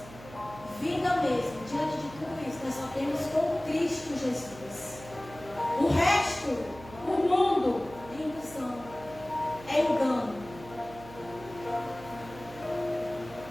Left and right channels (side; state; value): right; noise; hum, 17 dB below the sound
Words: vida mesmo, diante de tudo isso, nós só temos com Cristo Jesus.